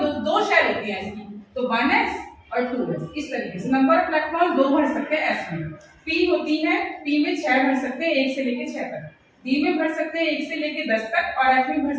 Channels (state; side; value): identical; both; correlation 1.00